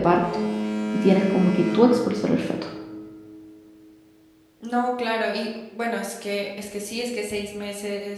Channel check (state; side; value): identical; both; correlation 1.00